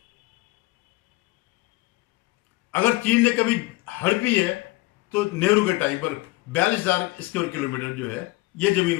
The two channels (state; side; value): quieter; right; 21.2 dB